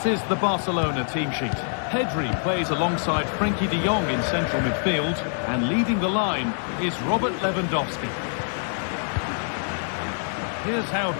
is the Barcelona team sheet. Pedri plays alongside Frenkie de Jong in central midfield, and leading the line is Robert Lewandowski. Here's how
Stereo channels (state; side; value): silent; right; digital silence